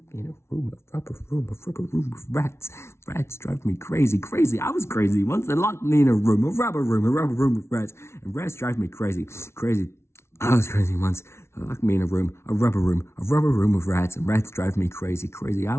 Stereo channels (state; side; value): late; right; 0.13 ms